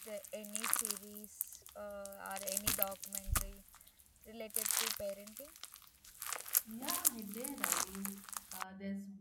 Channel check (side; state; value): both; identical; correlation 1.00